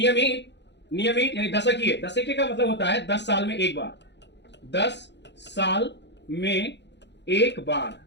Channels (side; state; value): right; late; 0.51 ms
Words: यानी दशकीय का मतलब होता है 10 साल में एक बार। 10 साल में एक बार,